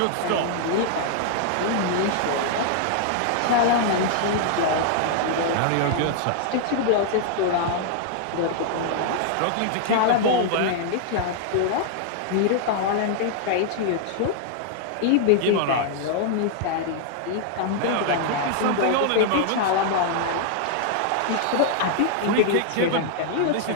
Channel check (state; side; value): different; both; correlation -0.01